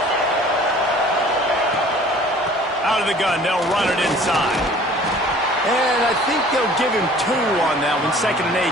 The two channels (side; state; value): both; normal; correlation 0.50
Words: Out of the gun, they'll run it inside. And I think they'll give him 2 on that one. 2nd and 8